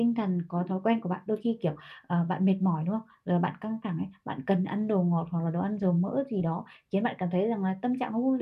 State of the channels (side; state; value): both; identical; correlation 1.00